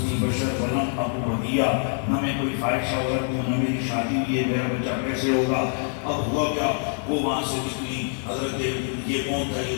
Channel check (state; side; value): silent; right; 62 dB below the other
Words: بشر ولم اک بغیہ، نہ میں کوئی فاحشہ عورت ہوں، نہ میری شادی ہوئی ہے، میرا بچہ کیسے ہوگا؟ اب ہوا کیا، وہ وہاں سے نکلی، حضرت یہ کون تھا؟ یہ